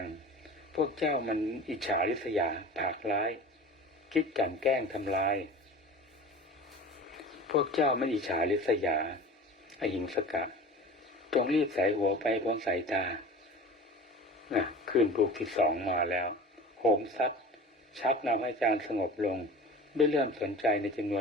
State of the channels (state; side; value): normal; both; correlation 0.38